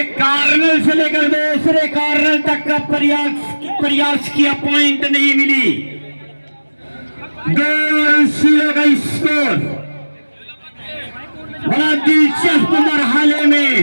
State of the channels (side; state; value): both; inverted; correlation -1.00